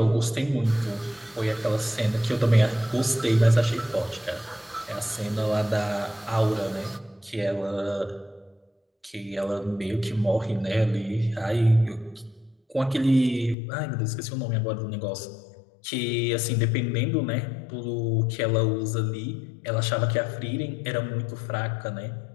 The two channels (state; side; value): drops out; right; at 13.6 s